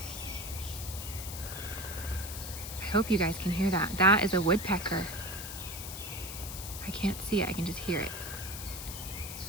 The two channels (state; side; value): noise; left; hiss, 8 dB below the sound